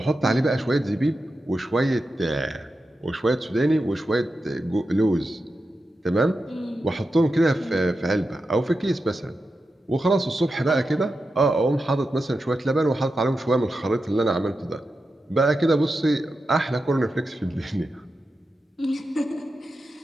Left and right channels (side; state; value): both; normal; correlation 0.90